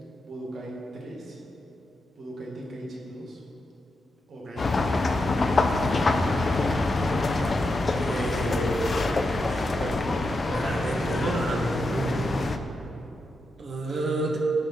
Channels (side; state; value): both; normal; correlation 0.86